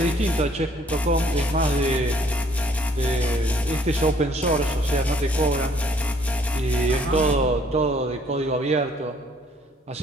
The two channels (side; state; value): both; normal; correlation 0.62